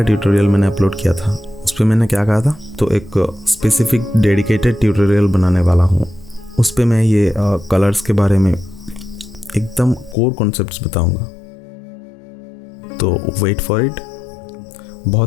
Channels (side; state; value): right; drops out; at 10.2 s